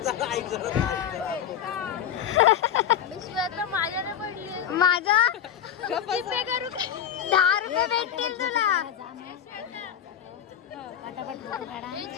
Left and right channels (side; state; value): right; quieter; 9.4 dB